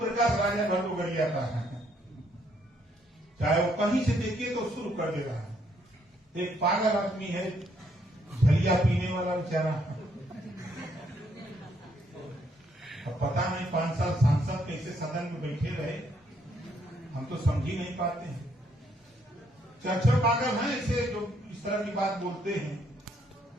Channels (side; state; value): both; normal; correlation 0.71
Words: राजा भट्टोगरिया का है, चाहे वो कहीं से देखिए तो शुरू कर दे रहा है। एक पागल आदमी है, झलिया पीने वाला बेचारा। अब पता नहीं 5 साल सांसद कैसे सदन में बैठे रहे, हम तो समझ ही नहीं पाते हैं। चर्चा पागल हैं ऐसे जो इस तरह की बात बोलते हैं